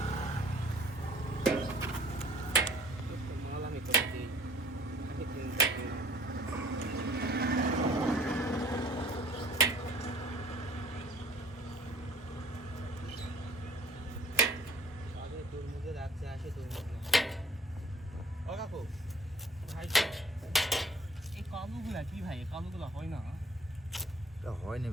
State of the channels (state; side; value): normal; both; correlation 0.53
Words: এই কালুগুলা কি ভাই? কালুগুলা হয় না? এটা হয়নি